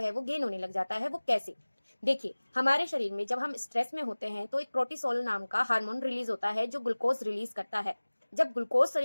वो गेन होने लग जाता है। वो कैसे? देखिए, हमारे शरीर में जब हम स्ट्रेस में होते हैं तो एक प्रोटिसोल नाम का हार्मोन रिलीज होता है जो ग्लूकोज रिलीज करता है। जब ग्लूकोज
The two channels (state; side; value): inverted; both; correlation -1.00